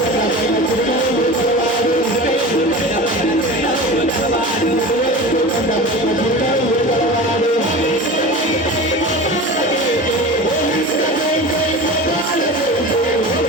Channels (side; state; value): both; normal; correlation 0.32